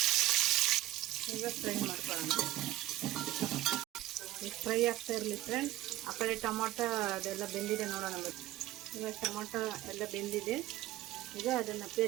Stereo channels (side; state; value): left; quieter; 15.2 dB